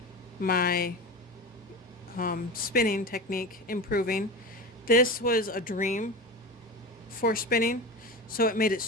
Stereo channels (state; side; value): normal; both; correlation 0.26